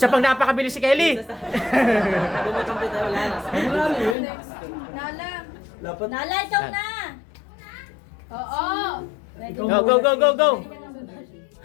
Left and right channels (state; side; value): drops out; right; at 4.2 s